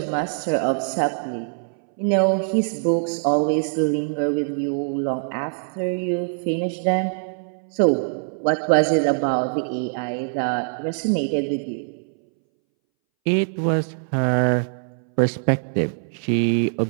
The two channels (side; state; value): left; silent; 62 dB below the other